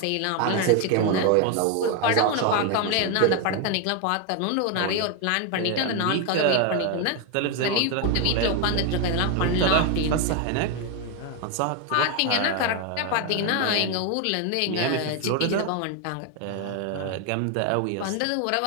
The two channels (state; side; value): different; both; correlation 0.01